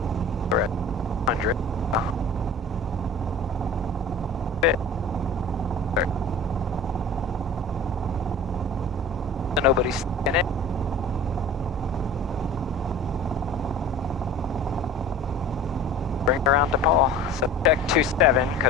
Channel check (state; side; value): normal; both; correlation 0.40